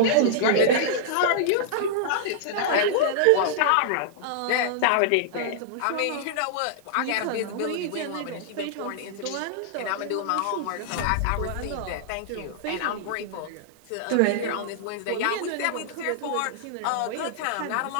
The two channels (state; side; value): different; both; correlation -0.01